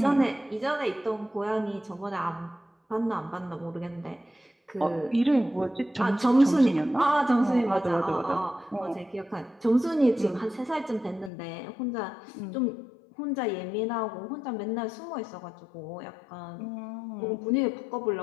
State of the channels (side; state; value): right; drops out; at 11.3 s